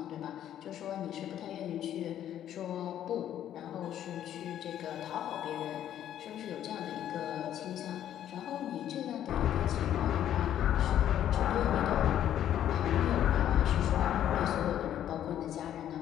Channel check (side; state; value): right; quieter; 11.0 dB